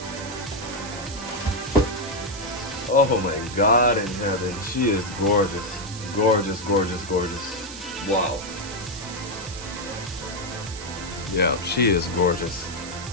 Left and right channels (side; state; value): right; noise; hiss, 12 dB below the sound